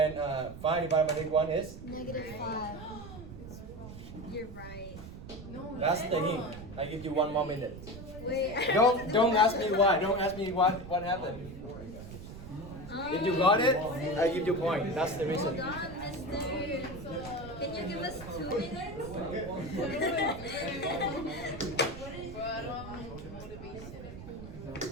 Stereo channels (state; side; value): noise; right; rumble, 13 dB below the sound